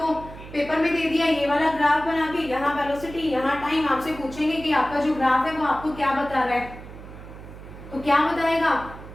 पेपर में दे दिया ये वाला ग्राफ बना के, यहाँ वेलोसिटी यहाँ टाइम, आपसे पूछेंगे कि आपका जो ग्राफ है वो आपको क्या बता रहा है, तो क्या बताएगा?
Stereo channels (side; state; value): right; noise; hum, 15 dB below the sound